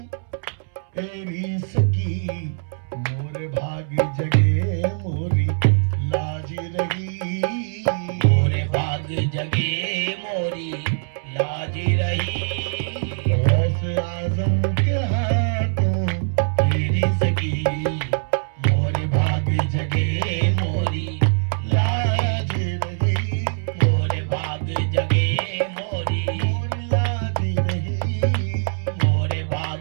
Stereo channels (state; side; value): silent; left; 64 dB below the other